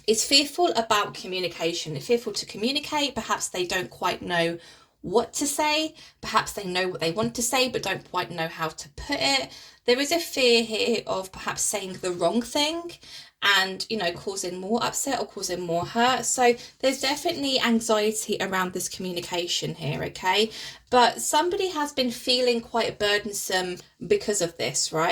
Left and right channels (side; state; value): both; identical; correlation 1.00